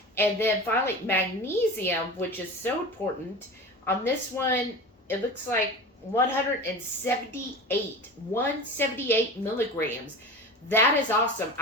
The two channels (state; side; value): normal; both; correlation 0.32